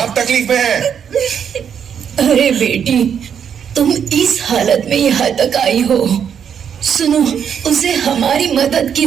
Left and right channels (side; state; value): left; quieter; 8.0 dB